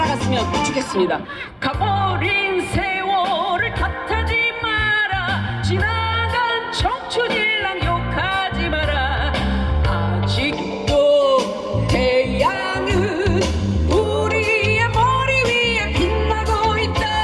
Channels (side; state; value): both; identical; correlation 1.00